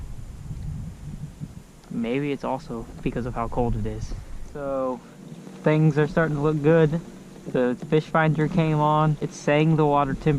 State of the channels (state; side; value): identical; both; correlation 1.00